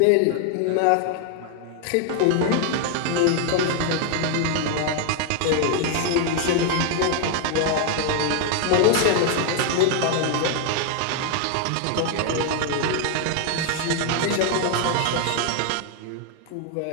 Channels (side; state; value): both; different; correlation 0.00